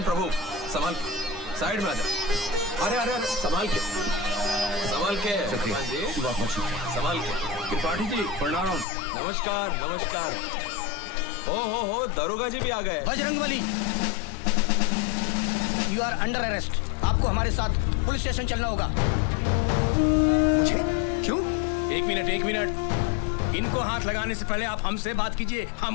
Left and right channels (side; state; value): right; drops out; at 8.8 s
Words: प्रभु संभाल, साइड में आ जा। अरे अरे अरे संभाल के, संभाल के। हनुमान जी संभाल के। त्रिपाठी जी प्रणाम। नमस्कार नमस्कार। हो दरोगा जी भी आ गए। Bajrangbali, you are under arrest. आपको हमारे साथ पुलिस स्टेशन चलना होगा। क्यों? एक मिनट, इनको हाथ लगाने से पहले आप हमसे बात कीजिए,